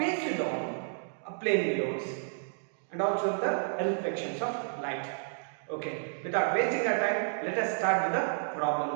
on plane mirrors and also the reflections of light. Okay, without wasting our time, let us start with the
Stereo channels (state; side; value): silent; left; digital silence